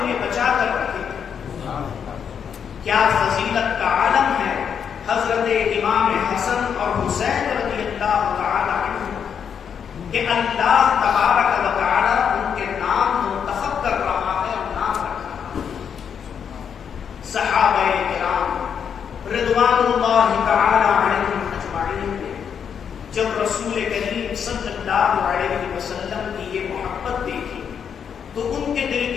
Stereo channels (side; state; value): right; quieter; 7.5 dB